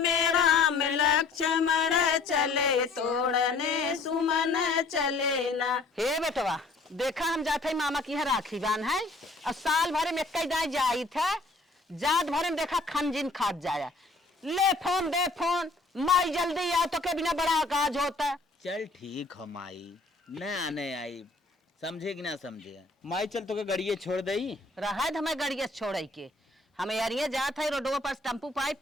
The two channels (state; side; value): quieter; right; 3.5 dB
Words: राम लक्ष्मण चले, तोड़ने सुमन चले ना। हे बेटवा देखा हम जाते मामा की यहाँ राखी बान है और साल भर में कई दाई जाई थे जात भर में देखा खनजिन खात जाया। ले फोन दे फोन माई जल्दी आओ तो के बिना बड़ा काज होता। चल ठीक हो माई न आने आई समझे कि ना समझे माई चल तो के गड़िए छोड़ दई रहा हमें गड़िया छोड़ के हमें यारिये जात है रोडवा पर टेम्पू पाई